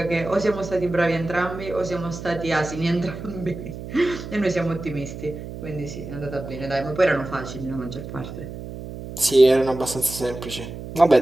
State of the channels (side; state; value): right; noise; hum, 10 dB below the sound